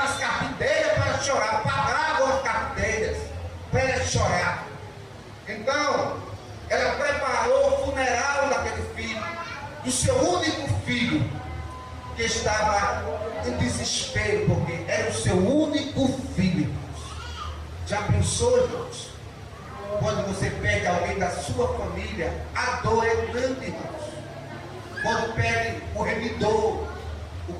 as carpinteiras para chorar, pagavam as carpinteiras para elas chorar. Então, ela preparou o funeral daquele filho, do seu único filho, que estava em desespero, porque era o seu único filho. Já pensou, irmãos? Quando você perde alguém da sua família, a dor é grande, irmãos. Quando perde o remidor, o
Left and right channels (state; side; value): identical; both; correlation 1.00